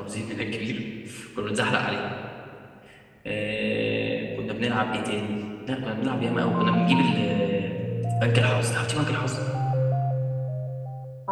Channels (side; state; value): both; identical; correlation 1.00